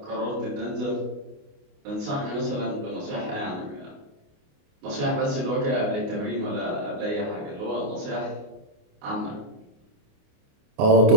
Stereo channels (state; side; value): late; left; 28 ms